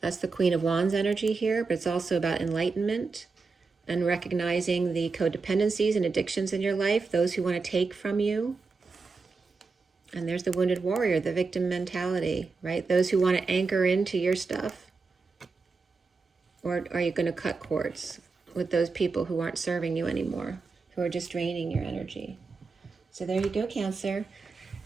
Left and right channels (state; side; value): quieter; left; 4.4 dB